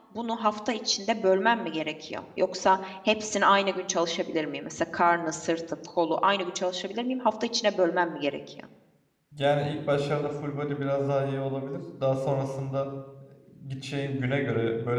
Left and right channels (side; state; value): both; identical; correlation 1.00